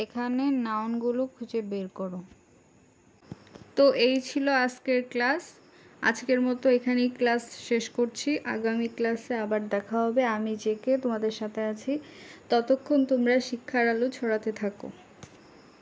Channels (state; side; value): identical; both; correlation 1.00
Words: এখানে নাউনগুলো খুঁজে বের করো। তো এই ছিল আজকের ক্লাস। আজকের মতো এখানেই ক্লাস শেষ করছি। আগামী ক্লাসে আবার দেখা হবে। আমি জেকে তোমাদের সাথে আছি। ততক্ষণ তোমরা শিক্ষার আলো ছড়াতে থাকো।